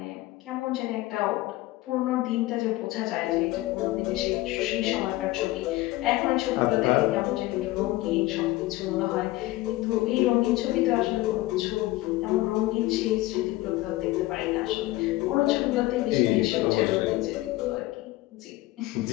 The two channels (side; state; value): right; quieter; 18.4 dB